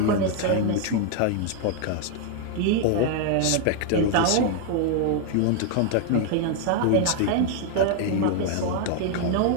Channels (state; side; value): different; both; correlation 0.00